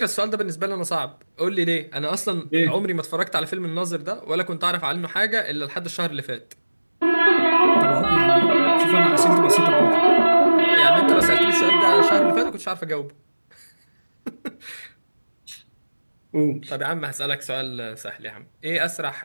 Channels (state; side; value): inverted; both; correlation -1.00